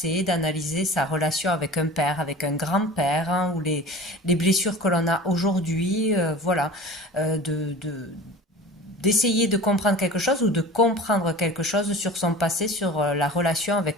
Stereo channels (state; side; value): normal; both; correlation 0.38